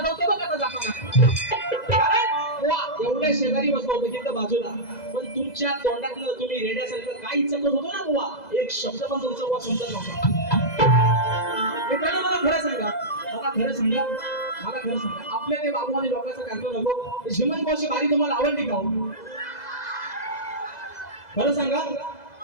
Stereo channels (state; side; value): late; right; 2.0 ms